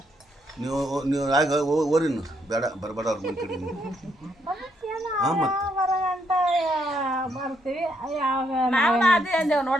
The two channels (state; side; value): normal; both; correlation 0.75